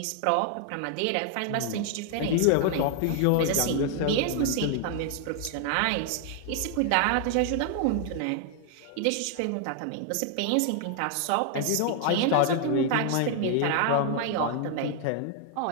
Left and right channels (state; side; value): different; both; correlation 0.00